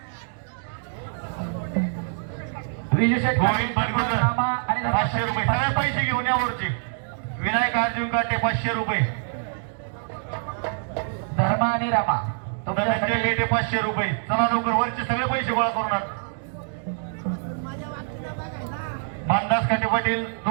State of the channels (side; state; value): left; silent; digital silence